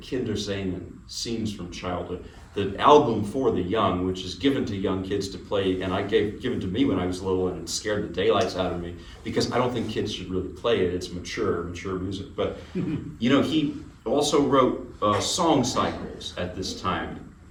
scenes from childhood. The album for the young, which is given to young kids to play, and given to me when I was little, and it scared the daylights out of me, because I don't think kids should really play it. It's mature music. But you know, he also wrote song cycles at this time,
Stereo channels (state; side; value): identical; both; correlation 1.00